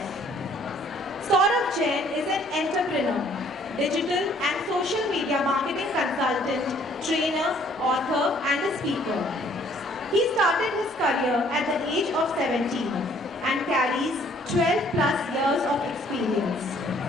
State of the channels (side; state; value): both; normal; correlation 0.60